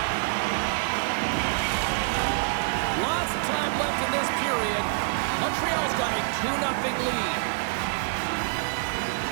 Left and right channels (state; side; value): silent; left; 61 dB below the other